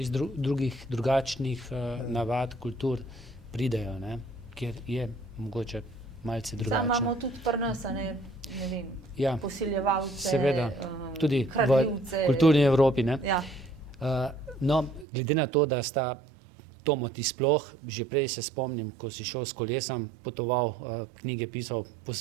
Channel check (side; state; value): left; drops out; at 15.1 s